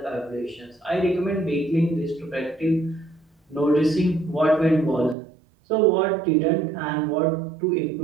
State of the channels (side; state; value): left; drops out; at 5.2 s